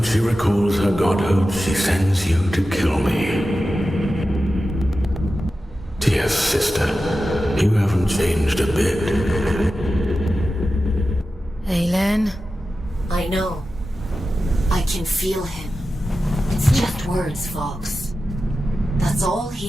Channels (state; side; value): normal; both; correlation 0.93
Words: she recalls her godhood, she sends you to kill me. Dear sister, you haven't changed a bit. Aelin? I know. I can feel him. It's just words, Fox. That's all